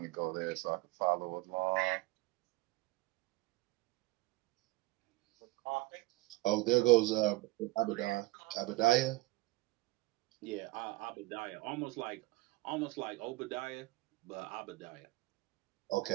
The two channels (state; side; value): quieter; left; 20.7 dB